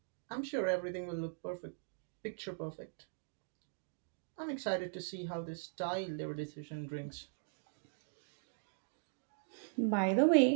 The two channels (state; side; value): silent; left; digital silence